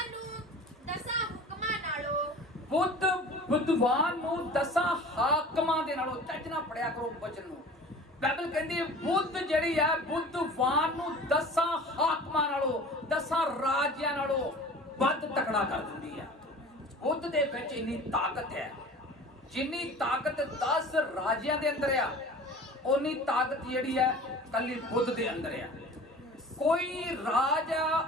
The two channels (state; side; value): normal; both; correlation 0.41